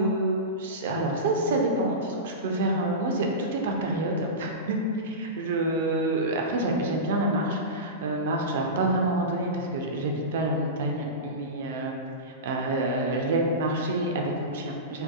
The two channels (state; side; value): normal; both; correlation -0.19